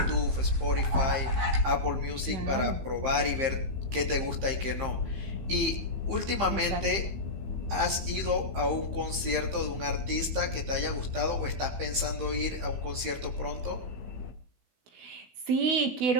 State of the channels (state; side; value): late; left; 15 ms